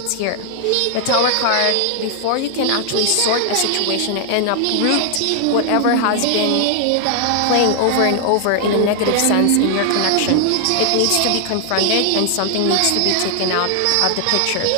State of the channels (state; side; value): different; both; correlation 0.00